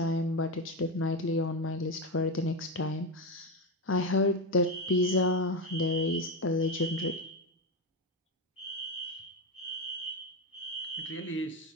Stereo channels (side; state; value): both; normal; correlation 0.14